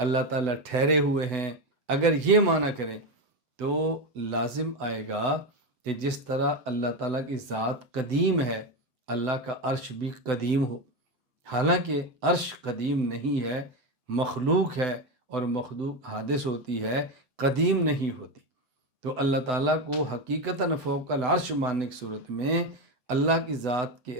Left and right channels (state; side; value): late; left; 7.9 ms